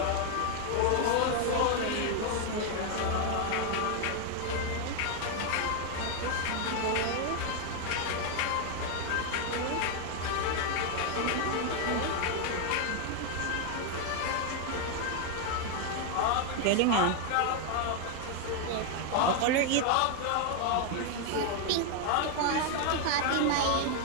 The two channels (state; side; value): different; both; correlation 0.00